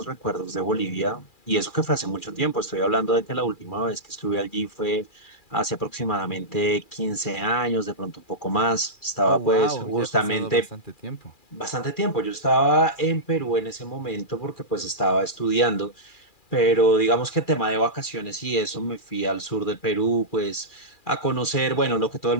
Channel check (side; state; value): right; late; 2.4 ms